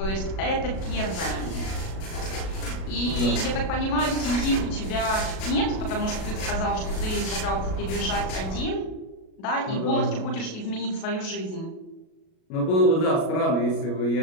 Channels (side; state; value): right; late; 37 ms